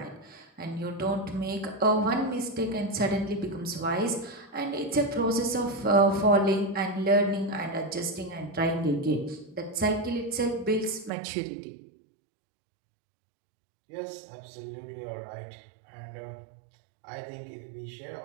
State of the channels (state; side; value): drops out; left; at 11.1 s